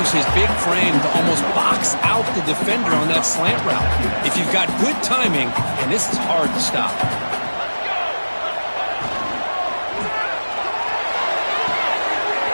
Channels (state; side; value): inverted; both; correlation -1.00